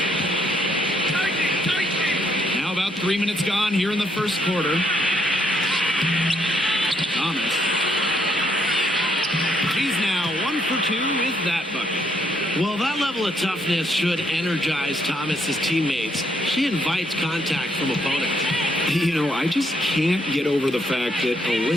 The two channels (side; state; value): both; normal; correlation 0.72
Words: Now about 3 minutes gone here in the first quarter. Thomas. She's now 1 for 2 with that bucket. Well, that level of toughness should energize Thomas's teammates. She invites contact from opponents. I just can't get over the fact that